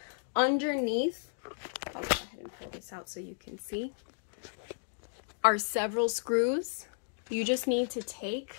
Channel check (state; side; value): silent; right; digital silence